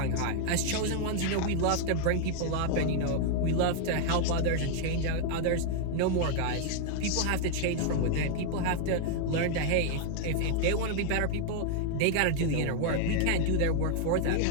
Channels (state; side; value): different; both; correlation 0.00